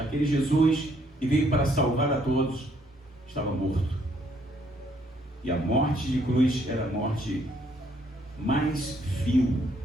Jesus que veio para salvar a todos estava morto. E a morte de cruz era a morte mais vil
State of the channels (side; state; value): both; normal; correlation 0.68